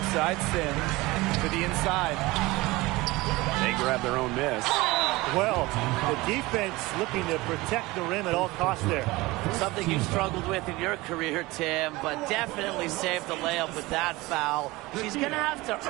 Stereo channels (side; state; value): left; quieter; 21.0 dB